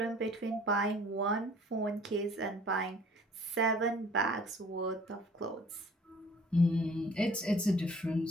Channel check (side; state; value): both; normal; correlation 0.53